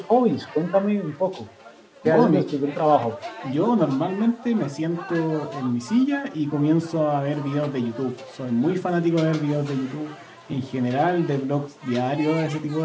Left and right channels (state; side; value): identical; both; correlation 1.00